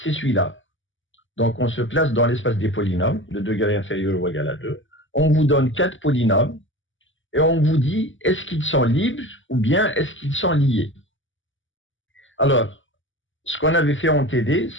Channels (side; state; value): right; late; 0.56 ms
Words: celui-là. Donc, on se place dans l'espace des polynômes, de degré inférieur ou égal à 2. On vous donne 4 polynômes et on vous dit, est-ce qu'ils sont libres ou bien est-ce qu'ils sont liés? Alors, ce qu'on avait fait en TD,